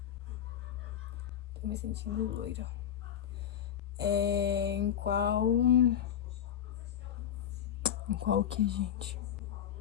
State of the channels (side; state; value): right; quieter; 9.7 dB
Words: Tô me sentindo loira. Em qual... Em qual que, gente?